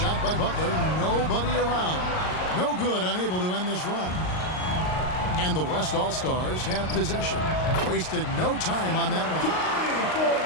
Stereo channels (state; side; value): late; right; 38 ms